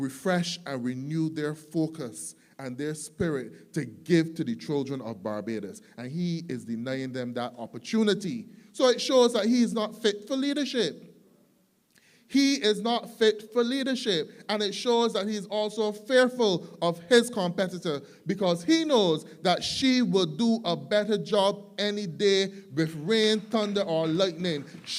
and renew their focus and their spirit to give to the children of Barbados. And he is denying them that opportunity. So it shows that he is not fit for leadership. He is not fit for leadership. And it shows that he is also fearful of his competitor because he knows that she will do a better job any day with rain, thunder, or lightning.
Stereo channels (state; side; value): identical; both; correlation 1.00